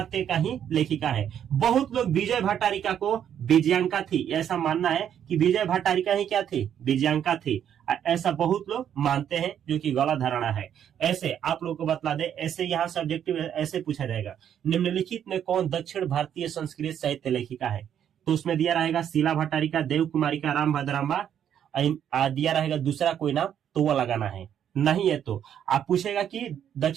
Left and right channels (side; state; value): left; quieter; 9.4 dB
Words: का ही लेखिका है। बहुत लोग विजय भट्टारिका को विजयांका थी ऐसा मानना है कि विजय भट्टारिका ही क्या थी, विजयांका थी, ऐसा बहुत लोग मानते हैं, जो कि गलत धारणा है। ऐसे आप लोग को बतला दे, ऐसे यहाँ सब्जेक्टिव ऐसे पूछा जाएगा निम्नलिखित में कौन दक्षिण भारतीय संस्कृत साहित्य लेखिका है, तो उसमें दिया रहेगा शीला भट्टारिका, देव कुमारिका, राम भद्राम्बा, दिया रहेगा दूसरा कोई नाम तो वो लगाना है, नहीं है तो आप पूछेगा कि